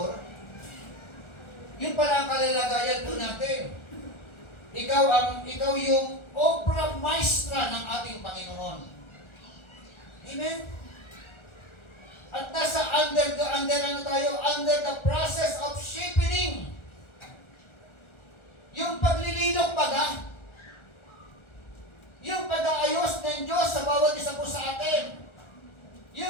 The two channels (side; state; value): right; late; 1.4 ms